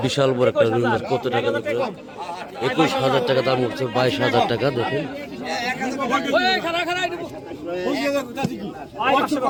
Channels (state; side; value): identical; both; correlation 1.00